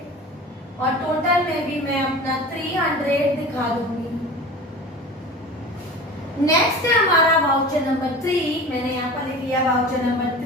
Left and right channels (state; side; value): normal; both; correlation 0.36